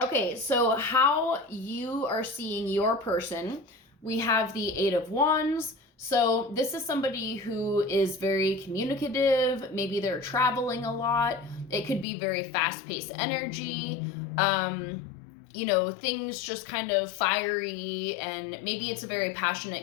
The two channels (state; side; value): drops out; right; at 12.1 s